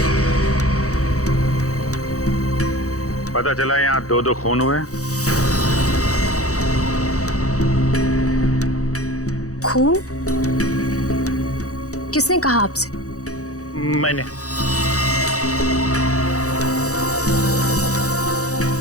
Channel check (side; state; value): right; late; 0.65 ms